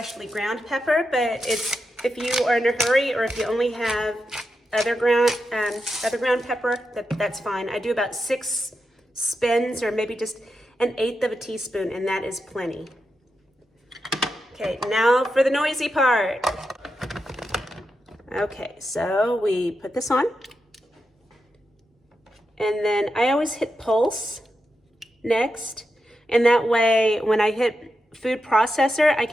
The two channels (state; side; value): normal; both; correlation 0.87